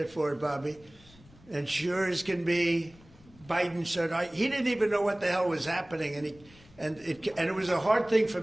for it, Bobby. And sure as can be, Biden said, he didn't even know what the hell was happening, and it was a hard thing for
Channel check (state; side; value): noise; left; rumble, 25 dB below the sound